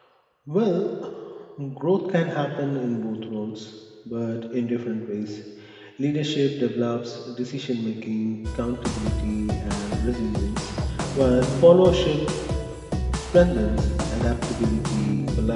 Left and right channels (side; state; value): both; identical; correlation 1.00